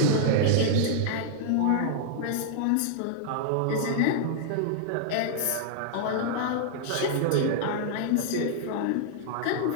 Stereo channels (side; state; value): both; different; correlation -0.01